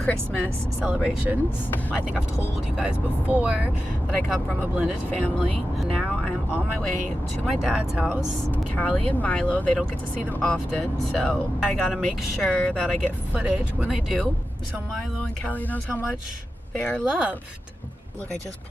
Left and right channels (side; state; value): both; normal; correlation 0.92